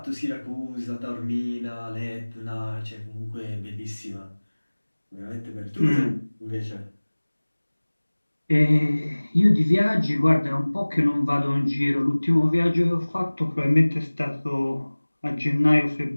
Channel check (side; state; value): both; inverted; correlation -1.00